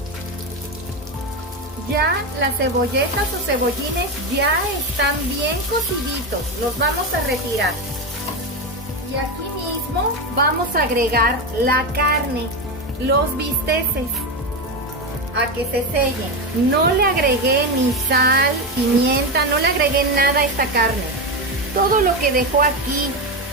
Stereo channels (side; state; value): both; normal; correlation 0.14